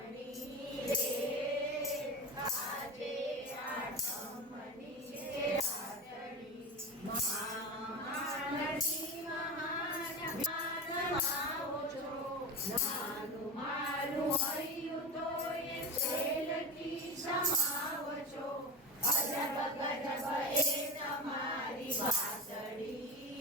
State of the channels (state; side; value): normal; both; correlation 0.24